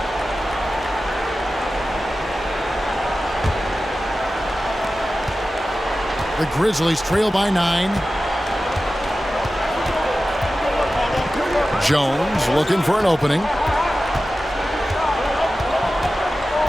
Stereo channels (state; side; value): normal; both; correlation 0.94